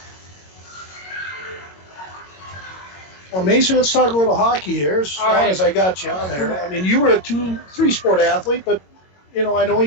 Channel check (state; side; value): late; right; 22 ms